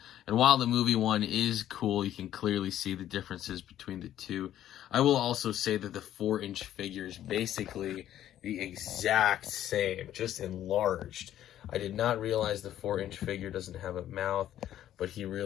And while the movie one is cool, you can clearly see the differences between the two. I will also say that the 4-inch figure is basically the exact same, just enlarged. I did not realize the 4-inch figure doesn't have a mouth, but he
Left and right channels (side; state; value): right; quieter; 11.9 dB